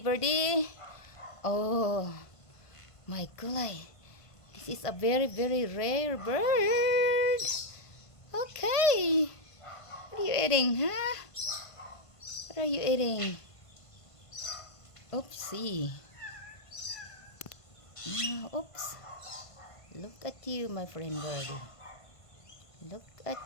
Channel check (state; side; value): late; right; 1.5 ms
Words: Oh, my God. This is a very, very rare bird. Okay. What are you eating, huh? What are you eating? Oopsie. Oops. Look at you, my friend birdie. Look